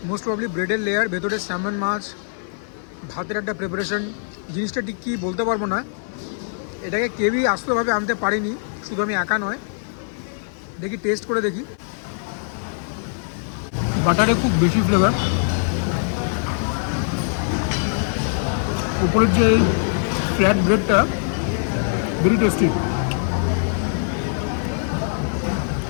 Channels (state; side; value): silent; right; 60 dB below the other